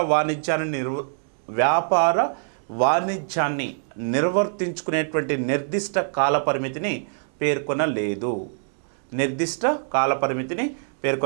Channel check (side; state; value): left; silent; digital silence